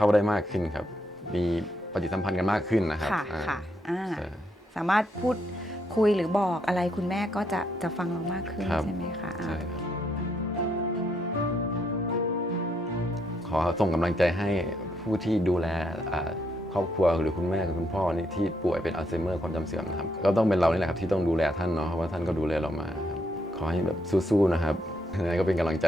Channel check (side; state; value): both; normal; correlation 0.76